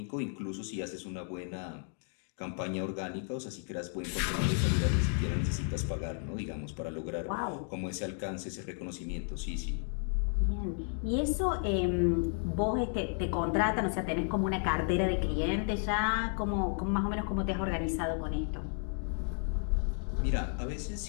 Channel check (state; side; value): silent; right; 56 dB below the other